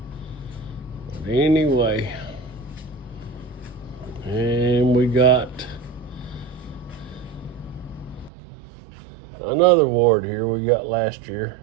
But anyway, and we got another award here we got last year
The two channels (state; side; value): drops out; left; at 8.3 s